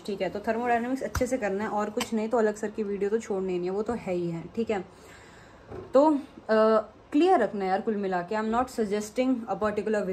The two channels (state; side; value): identical; both; correlation 1.00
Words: ठीक है। तो थर्मोडायनेमिक्स अच्छे से करना है और कुछ नहीं तो अलग सर की वीडियो तो छोड़नी नहीं है, वो तो है ही है, ठीक है। तो क्लियर रखना है यार, कुल मिला के I am not suggesting a particular